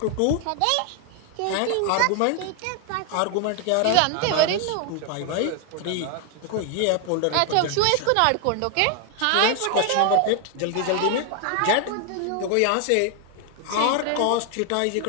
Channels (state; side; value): different; both; correlation 0.00